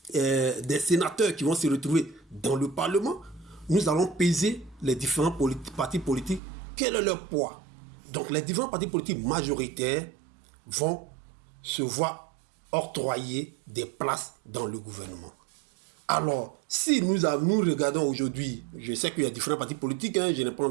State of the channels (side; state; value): left; drops out; at 6.4 s